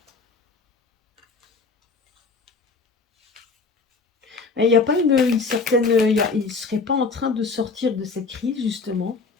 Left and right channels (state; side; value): quieter; right; 4.4 dB